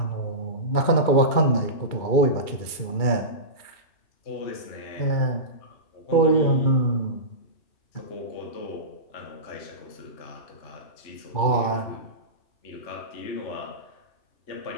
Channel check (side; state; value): right; late; 2.4 ms